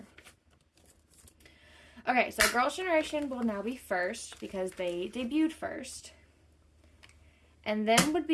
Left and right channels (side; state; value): both; identical; correlation 1.00